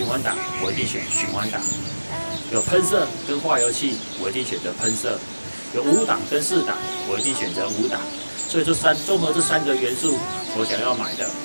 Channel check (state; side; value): inverted; both; correlation -1.00